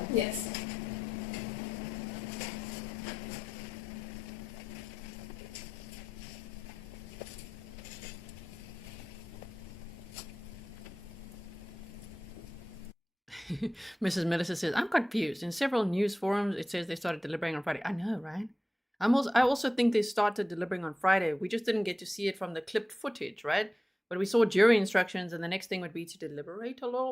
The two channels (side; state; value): both; normal; correlation 0.93